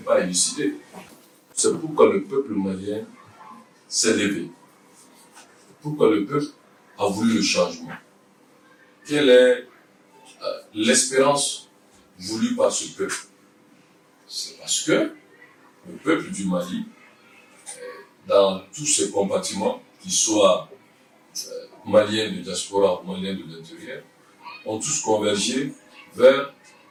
élucidé. C'est pourquoi le peuple malien s'est levé. Pourquoi le peuple a voulu le changement. Quelle est l'espérance voulue par ce peuple? C'est parce que le peuple du Mali, dans tous ses compartiments, qu'ils soient maliens de diaspora ou maliens de l'intérieur, ont tous convergé vers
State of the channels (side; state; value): both; identical; correlation 1.00